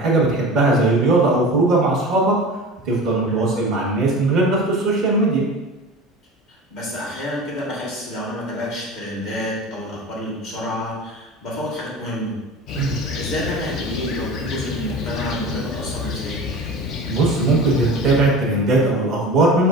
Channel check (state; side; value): normal; both; correlation 0.34